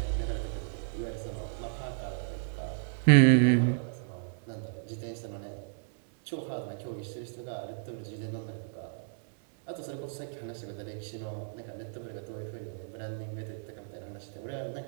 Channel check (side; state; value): left; silent; digital silence